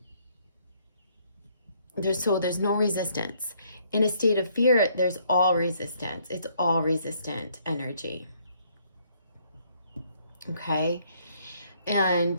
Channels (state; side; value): inverted; both; correlation -0.67